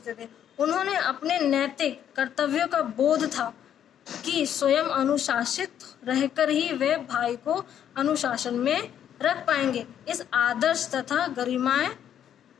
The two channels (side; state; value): right; quieter; 9.8 dB